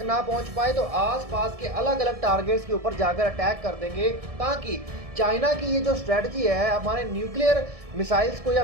ना पहुंच पाए तो आसपास के अलग अलग टारगेट्स के ऊपर जाकर अटैक कर देंगे, ताकि चाइना की ये जो स्ट्रेटजी है हमारे न्यूक्लियर मिसाइल्स को या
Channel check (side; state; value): left; late; 1.6 ms